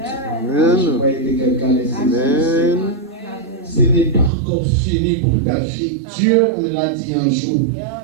croyais que quelqu'un les saisisse. Ce n'est pas encore fini pour ta vie. Dieu me l'a dit un jour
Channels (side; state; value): left; drops out; at 4.3 s